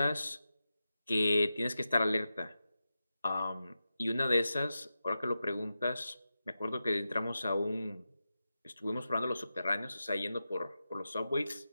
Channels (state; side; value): inverted; both; correlation -0.91